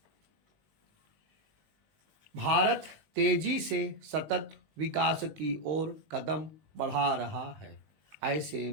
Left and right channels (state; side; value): late; left; 19 ms